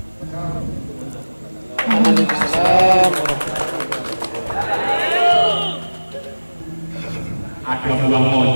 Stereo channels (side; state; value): both; inverted; correlation -1.00